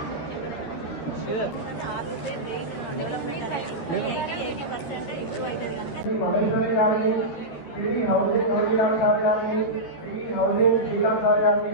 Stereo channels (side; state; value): right; late; 13 ms